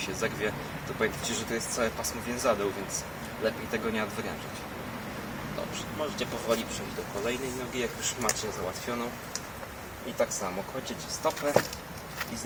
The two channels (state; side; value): identical; both; correlation 1.00